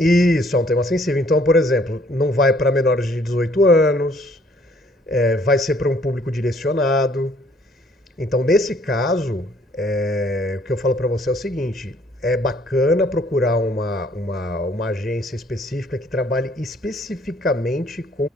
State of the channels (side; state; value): both; normal; correlation 0.62